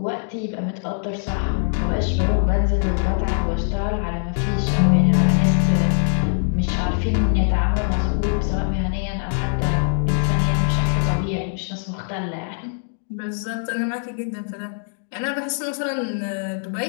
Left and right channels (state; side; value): silent; right; digital silence